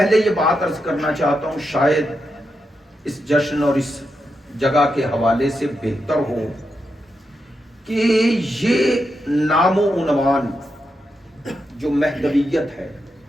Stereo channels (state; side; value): normal; both; correlation 0.86